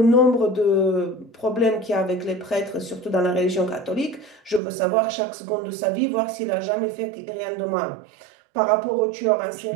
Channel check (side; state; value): left; drops out; at 4.6 s